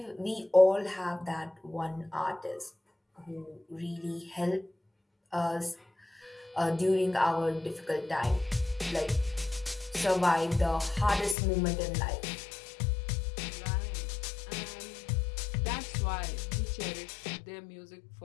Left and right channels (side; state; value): right; drops out; at 11.4 s